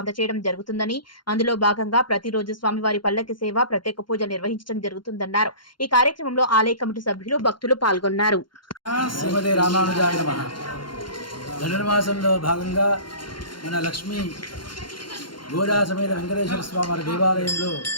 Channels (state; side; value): late; right; 0.72 ms